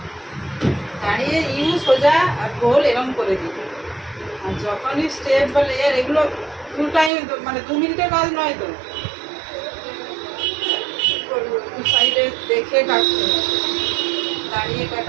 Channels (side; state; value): left; drops out; at 7.1 s